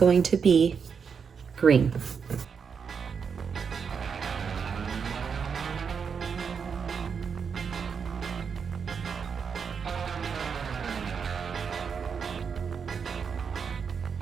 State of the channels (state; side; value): quieter; left; 6.3 dB